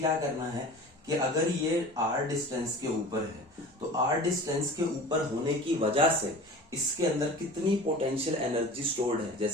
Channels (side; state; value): both; normal; correlation 0.38